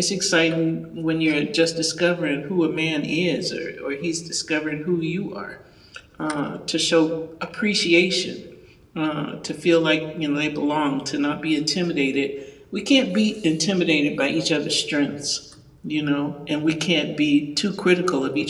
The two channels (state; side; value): identical; both; correlation 1.00